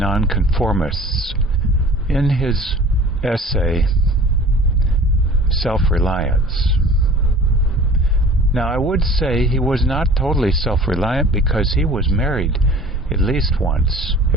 in his essay, Self-Reliance. Now, I would say he was not totally self-reliant because he was married at least once,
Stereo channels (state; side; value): normal; both; correlation 0.45